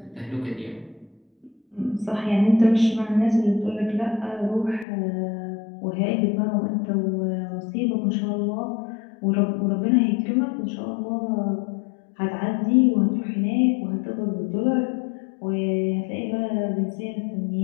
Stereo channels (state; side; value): drops out; right; at 4.9 s